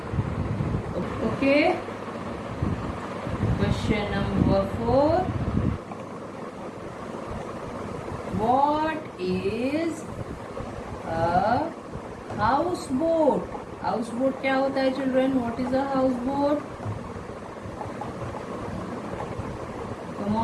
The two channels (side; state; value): both; identical; correlation 1.00